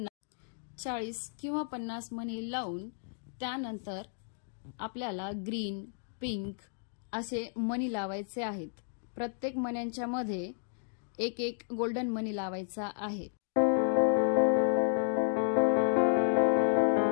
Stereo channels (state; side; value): silent; right; digital silence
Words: 50 मनी लावून त्यानंतर आपल्याला ग्रीन, पिंक असे मनी लावायचे आहेत। प्रत्येक मण्यांच्या मध्ये एक एक गोल्डन मनी लावायचा आहे।